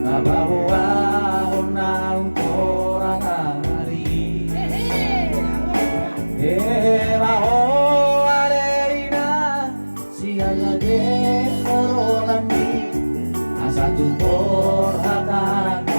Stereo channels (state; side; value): inverted; both; correlation -1.00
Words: Nabawa na orang hari Maho alerina Siaga de orolami Asa tu por